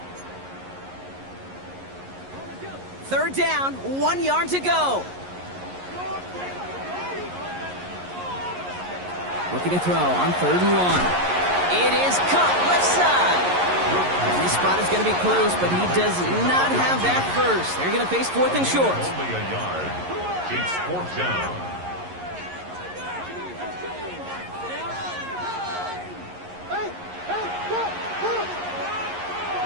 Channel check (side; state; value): left; late; 11 ms